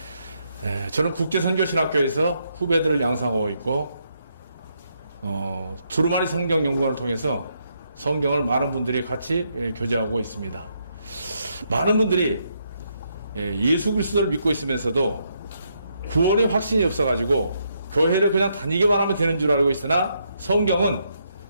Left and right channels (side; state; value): both; inverted; correlation -0.77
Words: 저는 국제선교신학교에서 후배들을 양성하고 있고 두루마리 성경연구원을 통해서 성경을 많은 분들이 같이 교제하고 있습니다. 많은 분들이 예수 그리스도를 믿고 있으면서도 구원의 확신이 없어가지고 교회를 그냥 다니기만 하면 되는 줄 알고 있으나 성경은